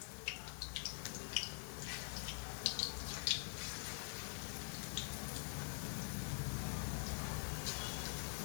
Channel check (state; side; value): silent; right; digital silence